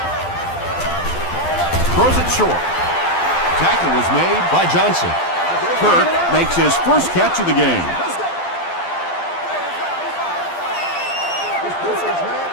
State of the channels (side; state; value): right; late; 12 ms